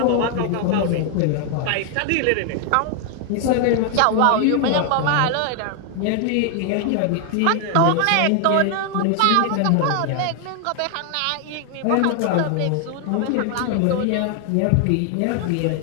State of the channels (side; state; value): both; different; correlation 0.00